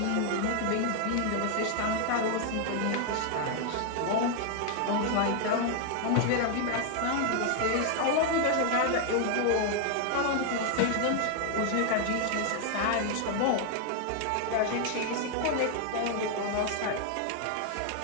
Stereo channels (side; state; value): both; different; correlation 0.00